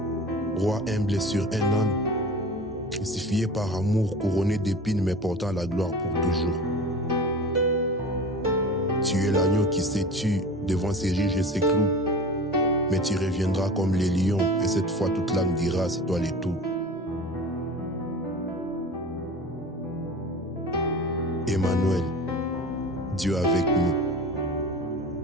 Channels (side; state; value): both; normal; correlation 0.37